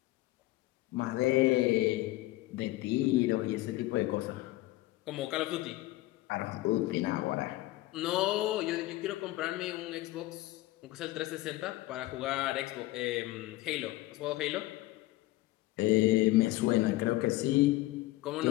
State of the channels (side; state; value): right; quieter; 17.8 dB